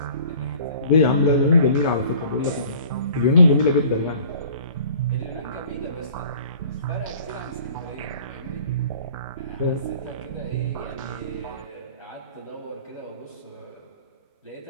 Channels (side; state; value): both; inverted; correlation -0.49